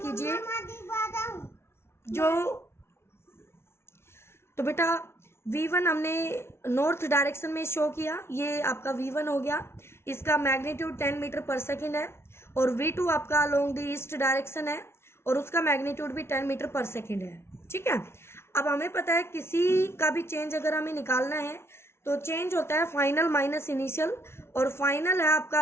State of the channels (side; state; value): right; late; 0.12 ms